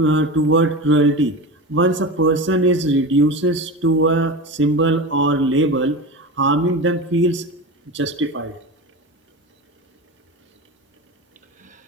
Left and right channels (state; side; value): normal; both; correlation 0.26